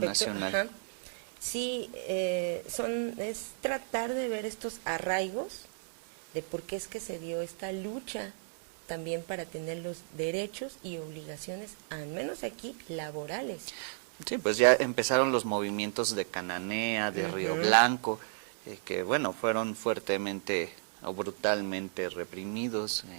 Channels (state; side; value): silent; left; digital silence